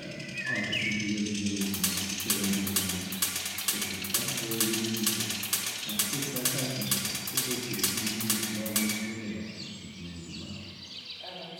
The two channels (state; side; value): identical; both; correlation 1.00